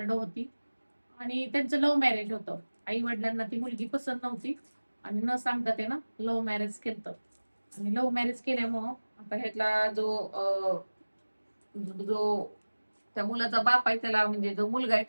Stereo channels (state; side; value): inverted; both; correlation -1.00